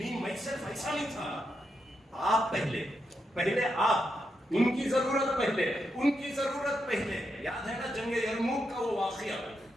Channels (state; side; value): normal; both; correlation 0.83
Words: میں صرف ایسا نہیں تھا. آپ پہلے آپ, ان کی ضرورت پہلے, ان کی ضرورت پہلے. یاد ہے نا جنگ یرموک کا وہ واقعہ,